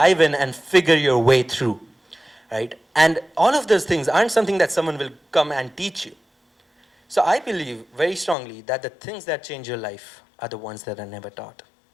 in and figure your way through, right? And all of those things aren't something that someone will come and teach you. So I believe very strongly that the things that change your life are the ones that are never taught.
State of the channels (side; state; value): right; drops out; at 8.3 s